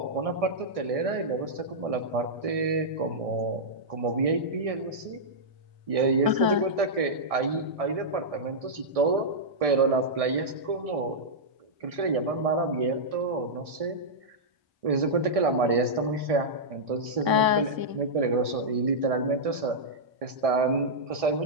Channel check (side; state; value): left; late; 1.6 ms